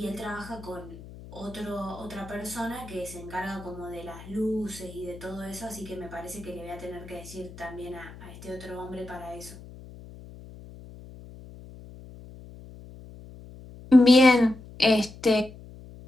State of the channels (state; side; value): noise; left; hum, 17 dB below the sound